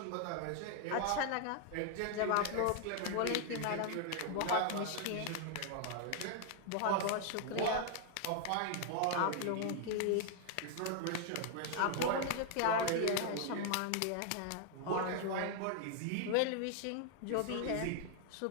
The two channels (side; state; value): both; different; correlation 0.00